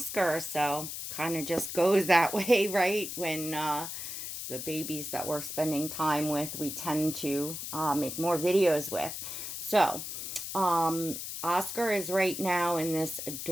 So kind of just goes that way, right? When the babies that we're spending time with, we tend to make more videos with. So, Oscar is right now in this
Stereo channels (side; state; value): left; noise; hiss, 7 dB below the sound